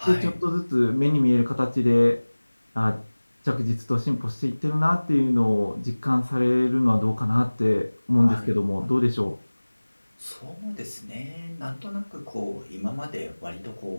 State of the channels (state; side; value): inverted; both; correlation -1.00